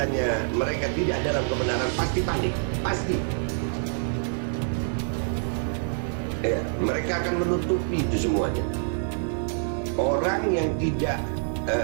mereka tidak dalam kebenaran pasti panik, pasti. Ya, mereka akan menutupi itu semuanya. Orang yang tidak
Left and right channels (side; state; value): left; silent; digital silence